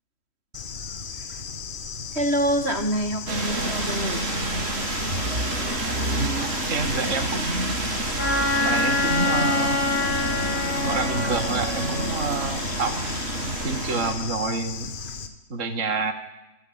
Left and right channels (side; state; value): left; late; 3.1 ms